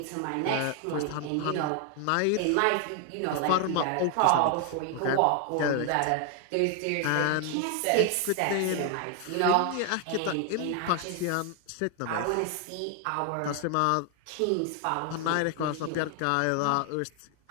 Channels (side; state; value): both; different; correlation 0.00